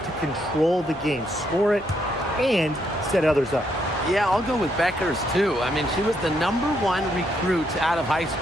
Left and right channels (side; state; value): both; normal; correlation 0.75